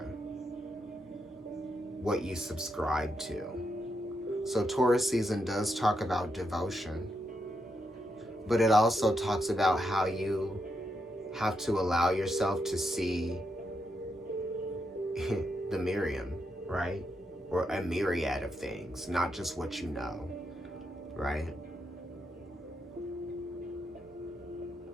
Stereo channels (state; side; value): normal; both; correlation 0.82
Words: what you subscribe to. So Taurus season does talk about devotion. But it also talks about how you have to allow yourself to see the Miriam, right? Or a myriad of things, not just what you know, right?